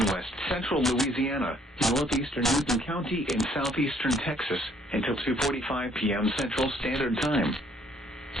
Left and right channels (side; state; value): both; normal; correlation 0.63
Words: west central Louisiana, northeastern Newton County in southeastern Texas, until 2:45 p.m. Central Standard Time.